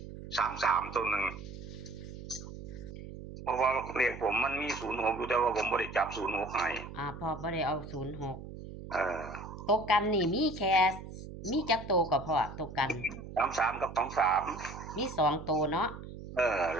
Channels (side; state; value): right; noise; hum, 12 dB below the sound